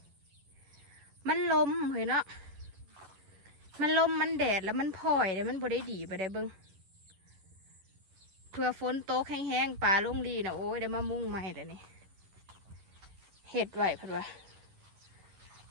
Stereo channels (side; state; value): left; late; 11 ms